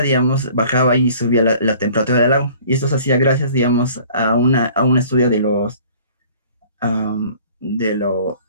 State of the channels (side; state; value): both; inverted; correlation -0.51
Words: digamos, bajaba y subía la temperatura del lago. Y esto se hacía gracias, digamos, a un estudio de